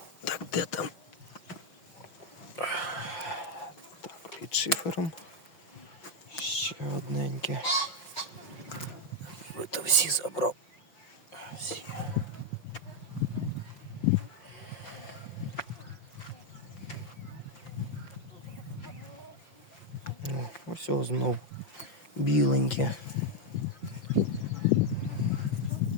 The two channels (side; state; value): right; late; 5.8 ms